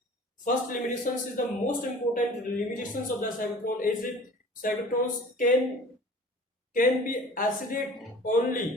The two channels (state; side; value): normal; both; correlation 0.44